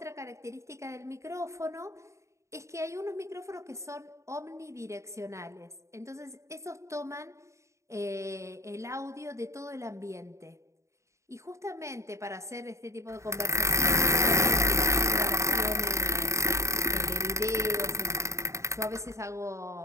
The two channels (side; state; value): left; late; 0.14 ms